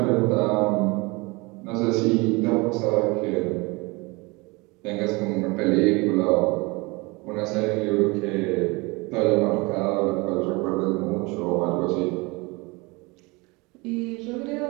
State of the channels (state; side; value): quieter; left; 25.8 dB